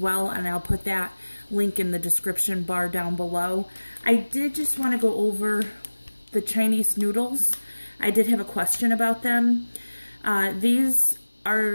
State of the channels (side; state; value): both; inverted; correlation -1.00